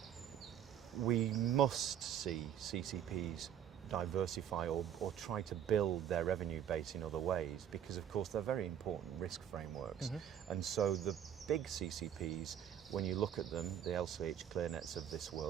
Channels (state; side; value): quieter; left; 9.7 dB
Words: We must see CCPs diversify or try to build their revenue base in other ways, because of course they're very important risk frameworks. And so the big CCPs, when you look at them, the LCH ClearNets of this